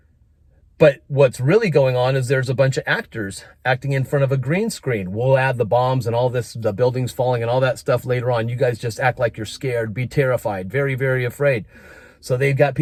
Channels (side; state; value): both; identical; correlation 1.00